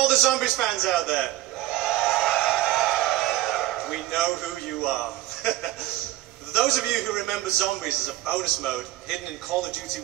the zombies fans out there. We know who you are. Those of you who remember zombies as a bonus mode hidden in Call of Duty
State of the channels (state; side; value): quieter; left; 15.4 dB